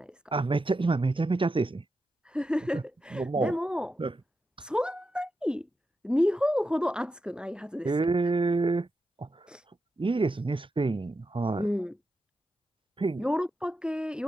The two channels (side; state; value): both; normal; correlation 0.88